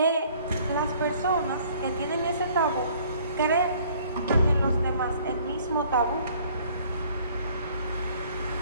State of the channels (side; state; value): both; inverted; correlation -0.57